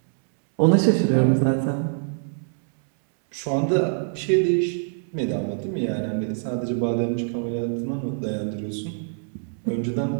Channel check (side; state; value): left; silent; 61 dB below the other